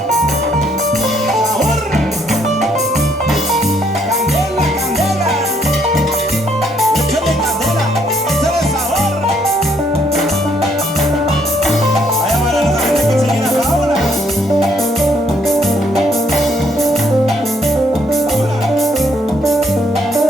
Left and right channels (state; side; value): normal; both; correlation 0.69